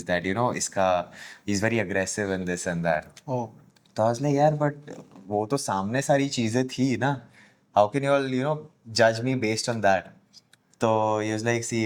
that, you know इसका, he is very aggressive and this and that. ओ तो आई वाज लाइक यार बट वो तो सामने सारी चीजें थी ना, how can you all you know जज मी बेस्ड ऑन दैट। तो he was like, see,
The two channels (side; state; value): both; identical; correlation 1.00